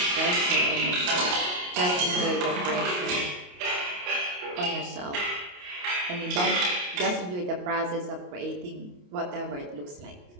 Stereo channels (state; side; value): late; left; 28 ms